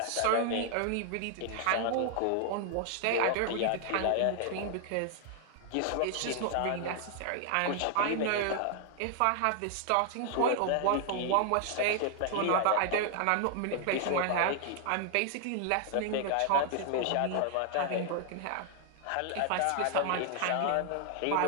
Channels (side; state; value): both; different; correlation 0.00